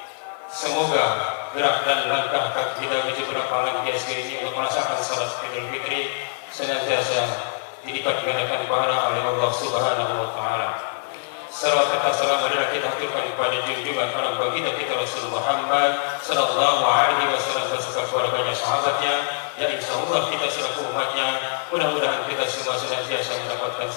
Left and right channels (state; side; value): silent; right; digital silence